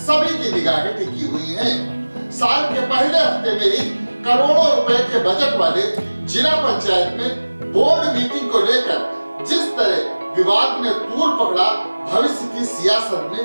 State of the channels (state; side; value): inverted; both; correlation -1.00